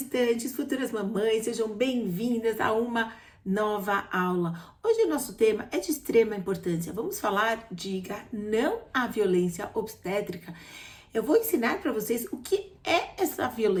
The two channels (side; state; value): both; identical; correlation 1.00